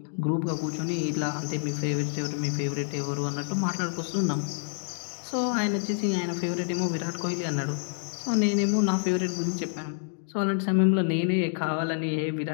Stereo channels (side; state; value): right; silent; digital silence